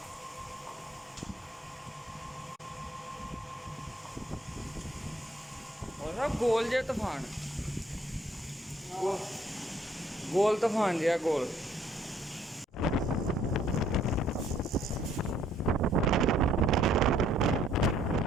और गोल जे तूफान, गोल तूफान जे गोल।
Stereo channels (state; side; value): normal; both; correlation 0.64